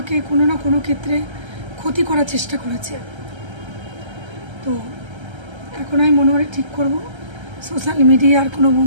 কোনো না কোনো ক্ষেত্রে ক্ষতি করার চেষ্টা করেছে। তো এখন আমি মনে মনে ঠিক করব, সোশ্যাল মিডিয়ার কোনো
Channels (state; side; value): late; left; 1.3 ms